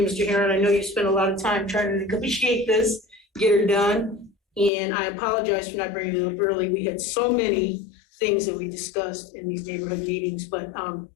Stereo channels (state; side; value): drops out; right; at 4.7 s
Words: Mr. Heron. I know you spent a lot of time trying to negotiate this, get her done. And I apologize for not bringing it up early. We had so many things that we discussed in these neighborhood meetings, but